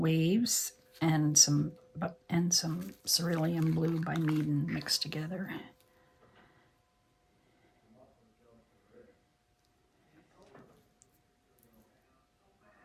and some cerulean blue by Meaden mixed together.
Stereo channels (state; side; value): identical; both; correlation 1.00